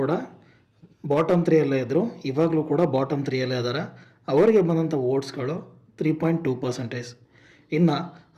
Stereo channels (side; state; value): both; identical; correlation 1.00